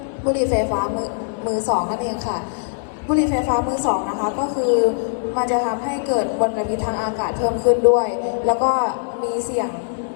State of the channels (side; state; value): right; silent; 65 dB below the other